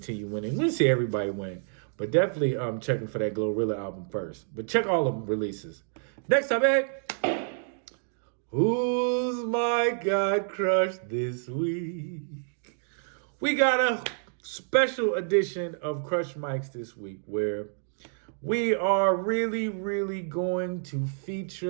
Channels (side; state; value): left; silent; digital silence